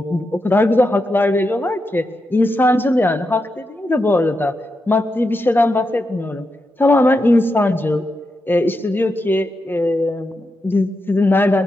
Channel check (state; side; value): normal; both; correlation 0.86